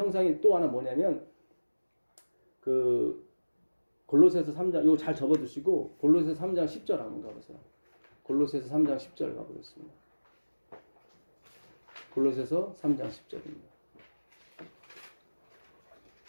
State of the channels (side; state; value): both; inverted; correlation -1.00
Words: 또 하나 뭐냐면 그 골로새서 3장 이거 잘 접어두시고 골로새서 3장 10절 한번 가보세요. 골로새서 3장 10절 가보겠습니다. 골로새서 3장 10절입니다.